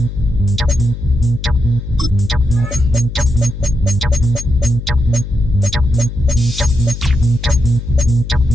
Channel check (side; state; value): left; noise; hum, 9 dB below the sound